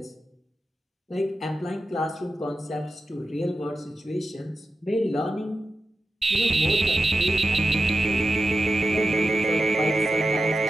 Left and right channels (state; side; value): normal; both; correlation 0.90